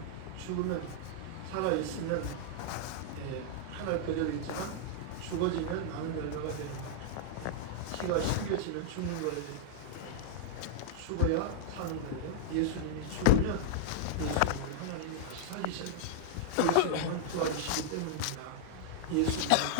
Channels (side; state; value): both; different; correlation -0.01